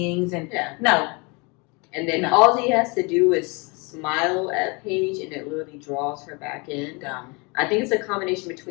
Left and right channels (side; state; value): right; quieter; 29.6 dB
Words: And no. And then all he has to do is smile at Paige and it literally draws her back in. I think it's a combination